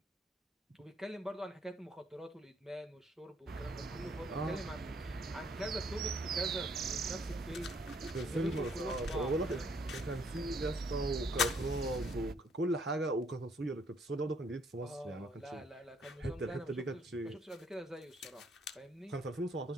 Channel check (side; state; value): both; normal; correlation 0.66